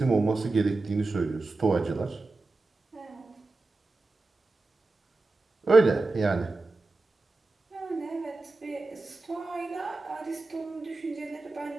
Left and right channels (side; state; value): left; quieter; 3.4 dB